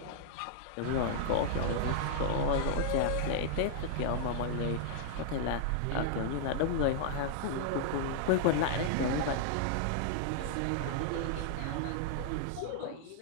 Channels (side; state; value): both; different; correlation -0.01